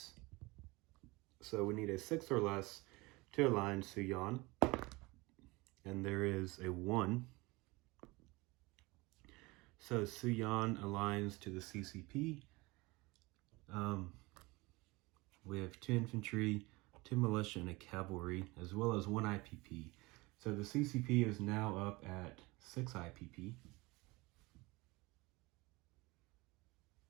So we need a 6 or less to align Suyan. And there is a 1. So Suyan aligns to the CCP. We have 2 infantry, 2 militia, and a cavalry, as well as 1 IPP. So the CCP is now up at 6 IPP.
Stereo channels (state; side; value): quieter; left; 23.3 dB